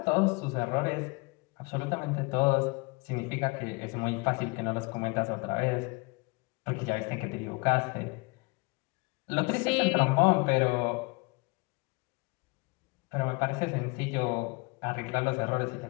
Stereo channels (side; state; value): right; quieter; 27.9 dB